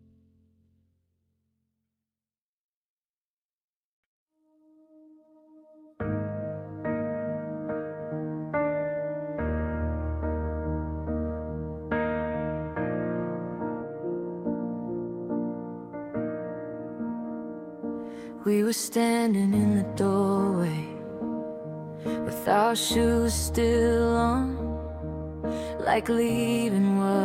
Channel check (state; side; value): identical; both; correlation 1.00